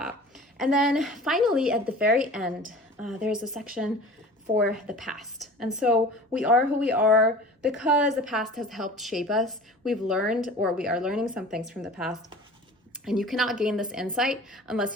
then finally, at the very end, there's a section for the past. And so we are who we are because the past has helped shape us. We've learned, or we are learning some things from the past. And you cannot gain this insight unless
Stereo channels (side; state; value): both; normal; correlation 0.41